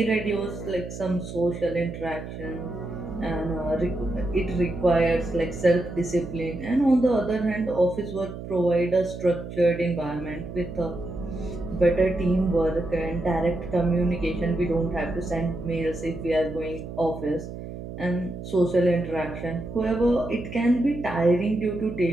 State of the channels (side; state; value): right; noise; hum, 10 dB below the sound